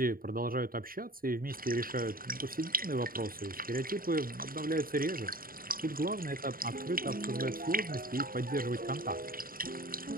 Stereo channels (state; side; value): late; left; 0.42 ms